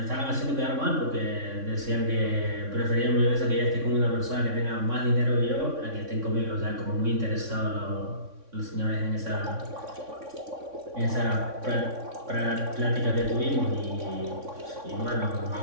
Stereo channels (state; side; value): late; left; 3.6 ms